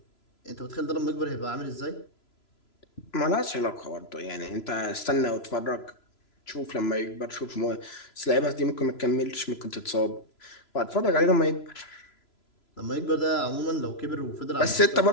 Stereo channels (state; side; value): late; right; 3.0 ms